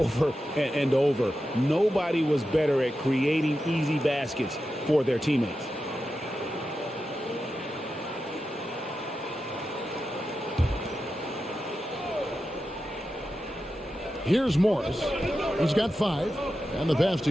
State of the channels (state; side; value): normal; both; correlation 0.90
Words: and over. Nobody was better at creating easy baskets for their teammates. Here's Morris. He's got 5. And the pass to